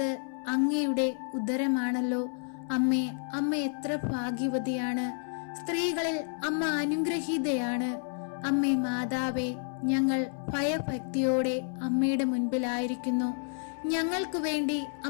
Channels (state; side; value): silent; right; 58 dB below the other